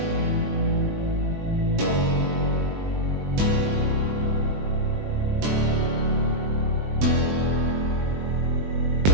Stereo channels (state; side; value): late; left; 21 ms